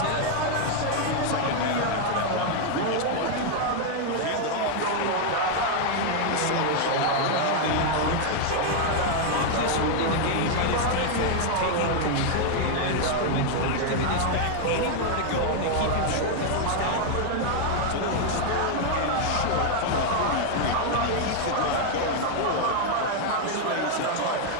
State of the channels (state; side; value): different; both; correlation 0.00